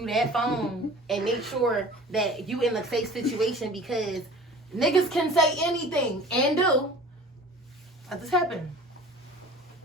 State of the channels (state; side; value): normal; both; correlation 0.43